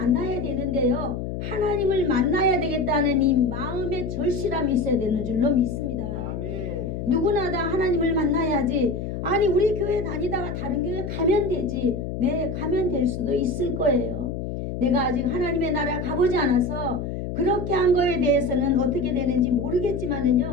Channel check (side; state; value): left; noise; hum, 5 dB below the sound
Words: 되는데요. 하나님을 만나야 되겠다는 이 마음의 절실함이 있어야 되는 줄로 믿습니다. 누구나 다 하나님을 만나야지. 아니 우리 교회 다니다가 다른 교회 가면 되지. 네, 가면 될 수도 있을 거예요. 내가 아직 하나님의 나라 가보지 않아서 그렇게 한 거에 대해서는 어떻게 되는지